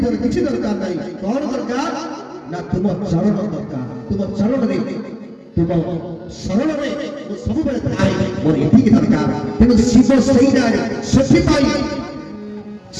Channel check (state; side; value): identical; both; correlation 1.00